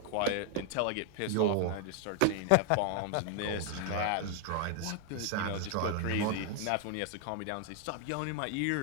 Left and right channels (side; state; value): both; different; correlation 0.00